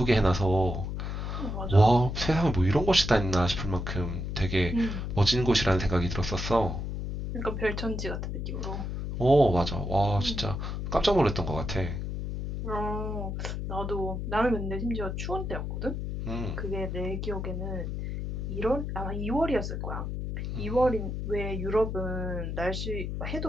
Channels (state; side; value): noise; left; hum, 4 dB below the sound